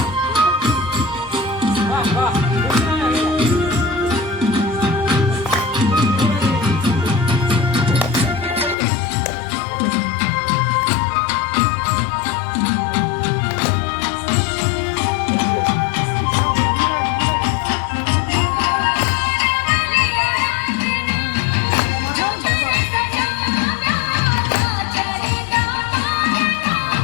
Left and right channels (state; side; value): drops out; right; at 8.8 s